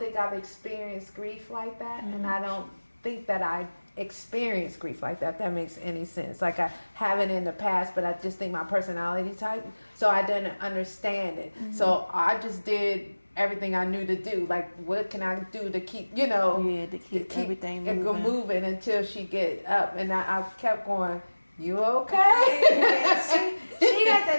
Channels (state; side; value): inverted; both; correlation -1.00